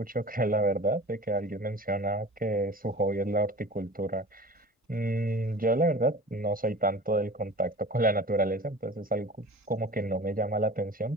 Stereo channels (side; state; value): both; normal; correlation 0.39